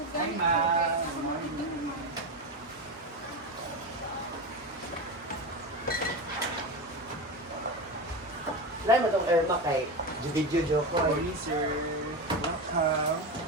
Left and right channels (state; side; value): normal; both; correlation 0.20